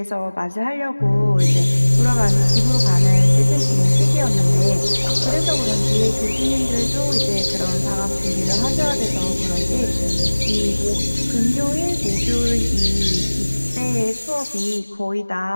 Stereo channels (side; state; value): both; inverted; correlation -1.00